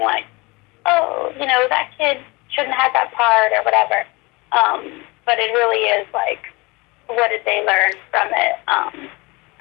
like, oh, that kid shouldn't have that part or whatever. But it really is like, what did they learn from it?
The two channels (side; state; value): right; quieter; 25.1 dB